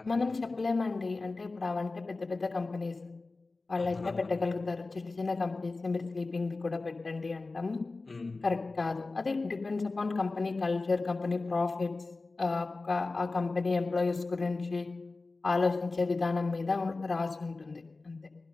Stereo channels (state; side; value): quieter; right; 3.5 dB